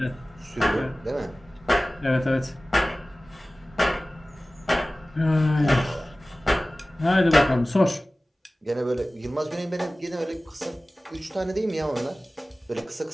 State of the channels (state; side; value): normal; both; correlation 0.97